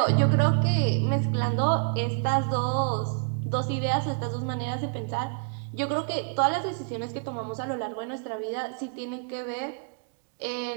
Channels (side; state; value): left; quieter; 39.0 dB